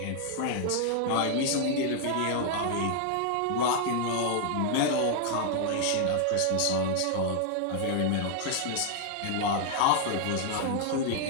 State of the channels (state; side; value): different; both; correlation 0.00